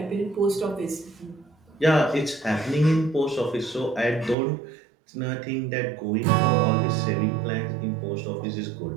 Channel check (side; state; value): left; drops out; at 4.4 s